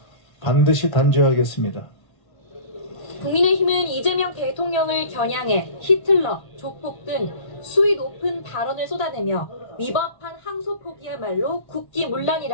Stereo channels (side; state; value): right; late; 1.5 ms